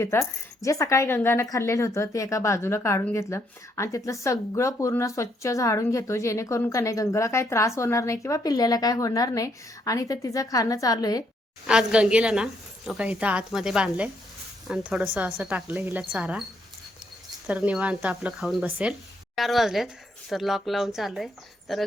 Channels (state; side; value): normal; both; correlation 0.73